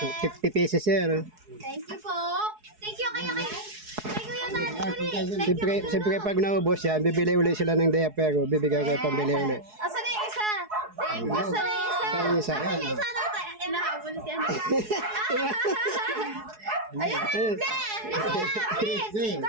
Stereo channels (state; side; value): late; left; 4.7 ms